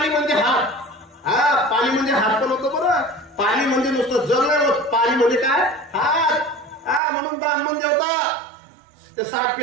म्हणजे हात. हा, पाणी म्हणजे हात पण होतं बरं. पाणी म्हणजे नुसतं जल नाही होत, पाणी म्हणजे काय? हात. हा, म्हणून ब्राह्मण देवता त्या 60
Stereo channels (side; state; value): left; drops out; at 7.0 s